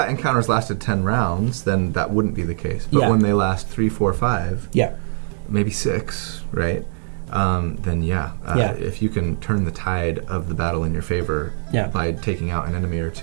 encounters lasted 10 rounds, then that wouldn't be the case. But when they last 3, 4, 5, maybe 6, right? Then if you can turn the tide of the battle in your favor by taking out an enemy or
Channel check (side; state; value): left; silent; 64 dB below the other